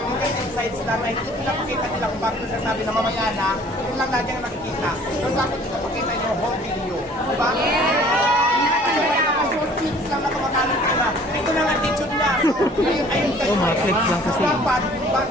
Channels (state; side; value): normal; both; correlation 0.53